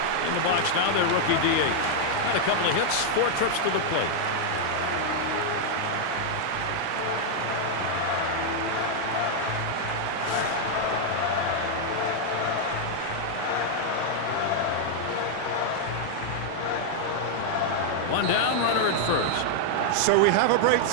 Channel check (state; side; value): different; both; correlation 0.00